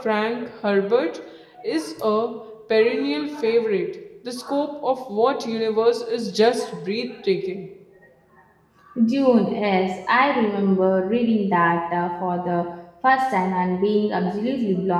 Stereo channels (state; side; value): identical; both; correlation 1.00